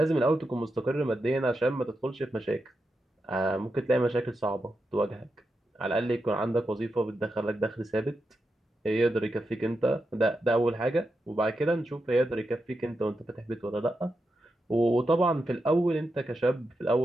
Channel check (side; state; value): both; normal; correlation 0.87